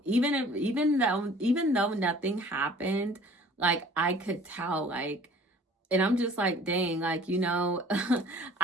even though nothing happened, like I could tell, like, and I'm just like, dang, like,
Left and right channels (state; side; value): normal; both; correlation 0.50